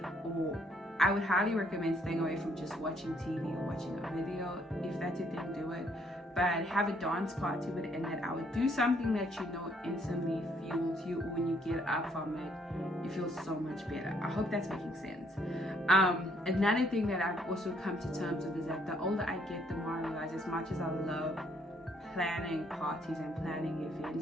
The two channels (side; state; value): both; normal; correlation 0.68